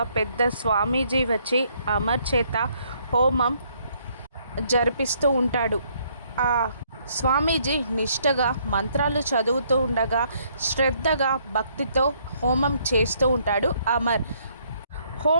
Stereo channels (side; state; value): both; inverted; correlation -0.68